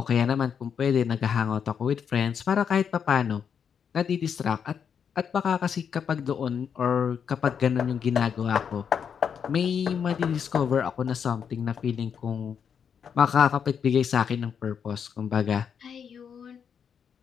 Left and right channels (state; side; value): quieter; right; 7.3 dB